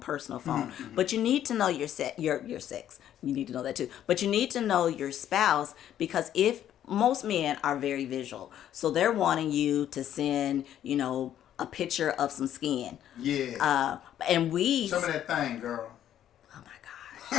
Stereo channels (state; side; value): quieter; right; 11.0 dB